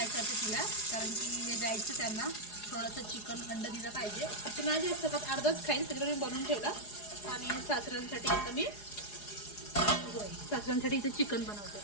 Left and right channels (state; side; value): late; right; 4.8 ms